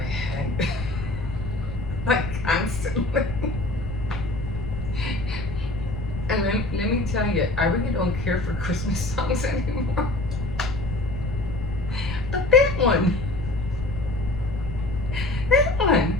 head, like constantly. And let me tell you, I really don't care for Christmas songs anymore. But that one,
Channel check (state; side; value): noise; left; rumble, 7 dB below the sound